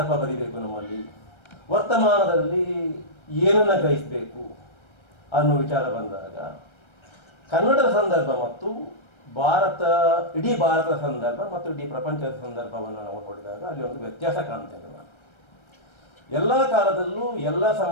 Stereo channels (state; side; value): late; right; 1.3 ms